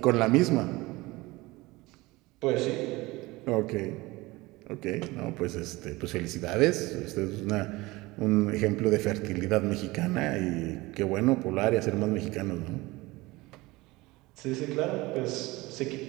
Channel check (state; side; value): quieter; left; 21.2 dB